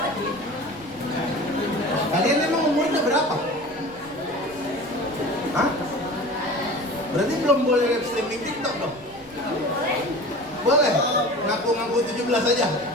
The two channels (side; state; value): right; noise; rumble, 24 dB below the sound